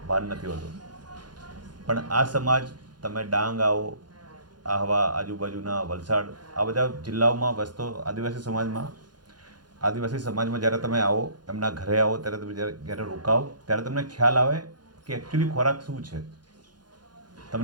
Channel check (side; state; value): left; late; 0.70 ms